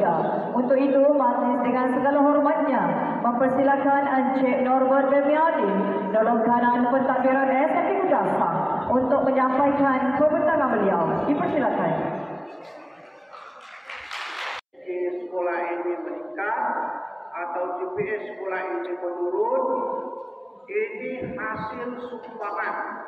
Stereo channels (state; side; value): identical; both; correlation 1.00